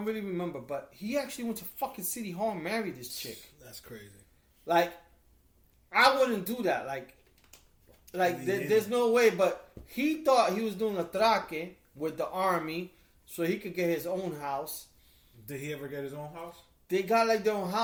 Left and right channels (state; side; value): identical; both; correlation 1.00